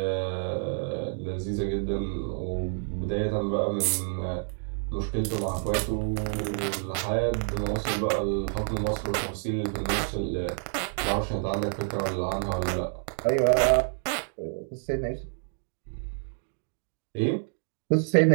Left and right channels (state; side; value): silent; left; 56 dB below the other